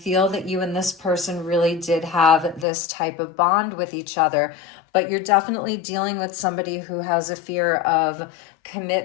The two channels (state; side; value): drops out; right; at 2.7 s